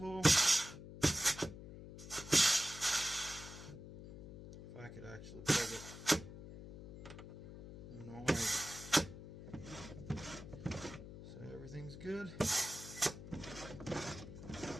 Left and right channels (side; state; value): left; noise; hum, 13 dB below the sound